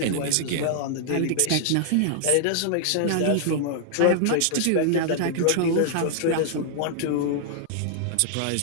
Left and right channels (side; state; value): both; different; correlation -0.01